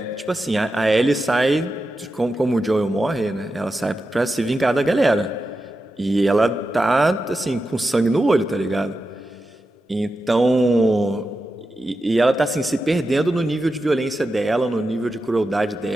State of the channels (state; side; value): normal; both; correlation 0.90